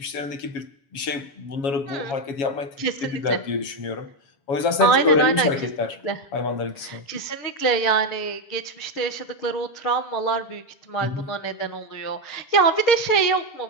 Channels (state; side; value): late; right; 7.2 ms